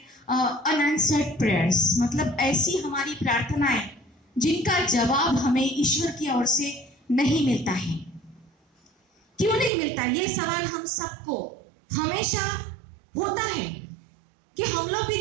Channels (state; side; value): drops out; left; at 9.7 s